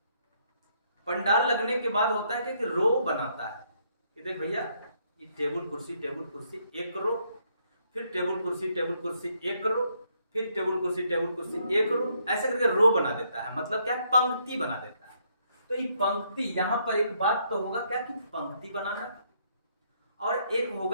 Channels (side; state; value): both; inverted; correlation -0.72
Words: पंडाल लगने के बाद होता है कि रो बनाता है कि देख भैया, ये टेबल कुर्सी एक रो, फिर टेबल कुर्सी एक रो, फिर टेबल कुर्सी एक रो, ऐसे करके रो बना देता है। मतलब क्या? पंक्ति बना देता है। तो ये पंक्ति, यहाँ पर एक बात तो होगा क्या कि पंक्ति बनाना, और एक